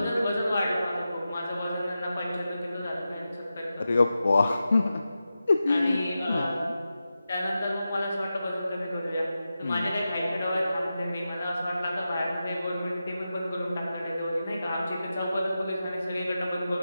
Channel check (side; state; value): both; inverted; correlation -0.92